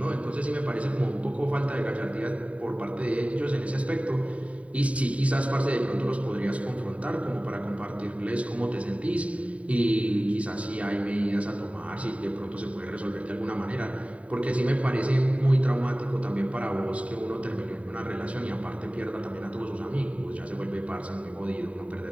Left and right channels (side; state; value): left; late; 0.066 ms